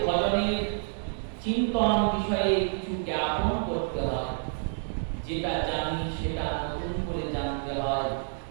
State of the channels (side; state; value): left; silent; digital silence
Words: ভজনের চিন্তন বিষয়ে কিছু জ্ঞাপন করতে হয়। যেটা জানি সেটা নতুন করে জানতে হয়,